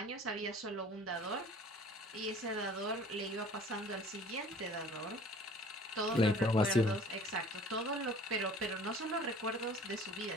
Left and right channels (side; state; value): both; normal; correlation 0.49